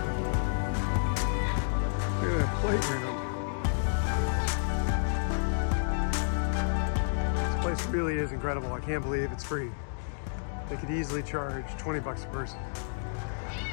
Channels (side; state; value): right; silent; digital silence